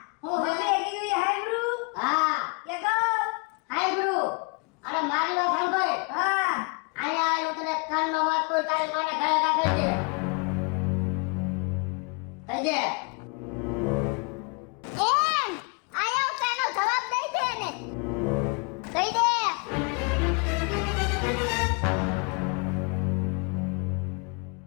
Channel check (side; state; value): right; quieter; 33.6 dB